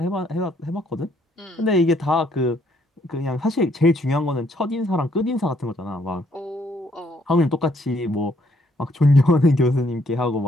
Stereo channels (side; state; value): both; normal; correlation 0.69